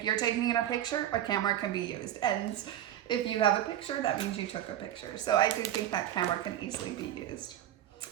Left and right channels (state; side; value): quieter; left; 11.9 dB